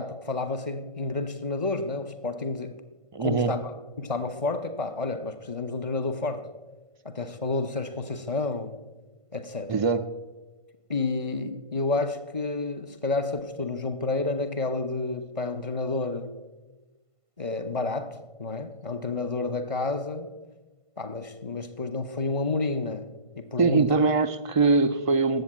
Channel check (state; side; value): late; left; 1.5 ms